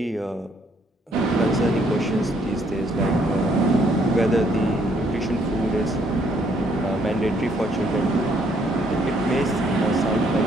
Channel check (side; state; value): both; normal; correlation 0.68